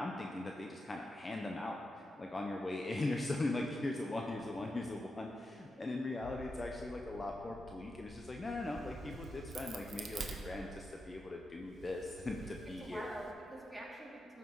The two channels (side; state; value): both; normal; correlation 0.88